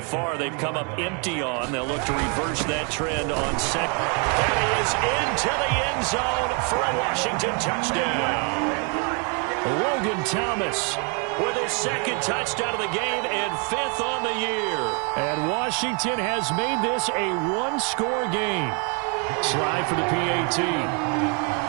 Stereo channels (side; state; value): left; quieter; 36.6 dB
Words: far they've come up empty on. They'll look to reverse that trend on 2nd. And he is into the end zone for a Washington touchdown. Logan Thomas with his 2nd touchdown of the game and 5th on the year. And Washington has made this a one-score game. Slide for the PAT.